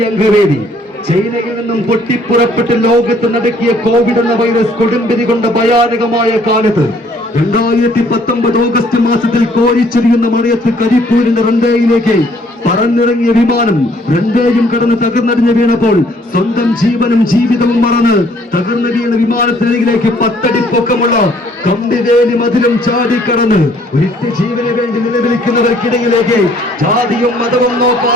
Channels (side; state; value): both; normal; correlation 0.62